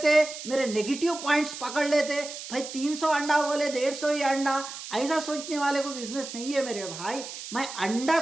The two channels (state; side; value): noise; right; hiss, 10 dB below the sound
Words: मेरे नेगेटिव पॉइंट्स पकड़ लेते, भाई 300 अंडा बोले 150 ही अंडा, ऐसा सोचने वाले को बिजनेस नहीं है मेरे भाई। मैं अंडा